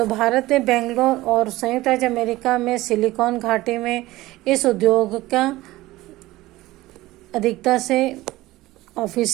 भारत में बेंगलोर और संयुक्त राज्य अमेरिका में सिलिकॉन घाटी में इस उद्योग का अधिकता से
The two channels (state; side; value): quieter; left; 17.9 dB